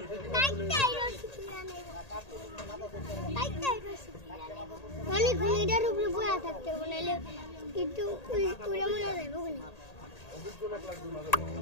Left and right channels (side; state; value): right; late; 1.8 ms